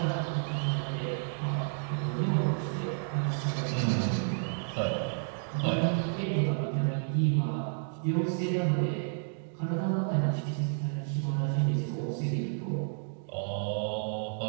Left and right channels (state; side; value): silent; left; 57 dB below the other